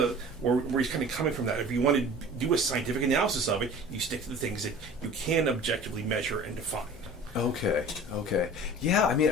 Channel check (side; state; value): both; normal; correlation 0.42